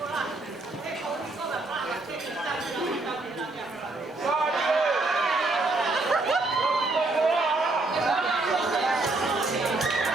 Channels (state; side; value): quieter; left; 3.1 dB